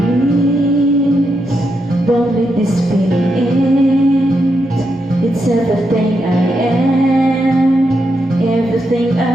let this feeling end. It's everything I am, everything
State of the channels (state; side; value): normal; both; correlation 0.83